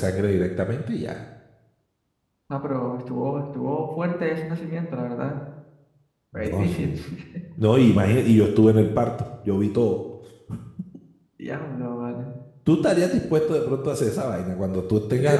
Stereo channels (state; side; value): identical; both; correlation 1.00